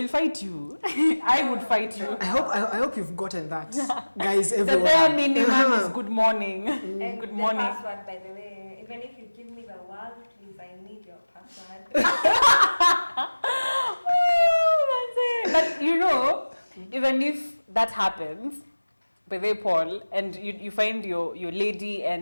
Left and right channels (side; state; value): both; inverted; correlation -1.00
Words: fight you. I would fight you. I hope you've gotten that. Guys, everyone. The bare minimum is good morning. And good morning. The password, by the way, even if you give me the world, please, I need your password. But even if that happens, by the way, Paul, and you find your lady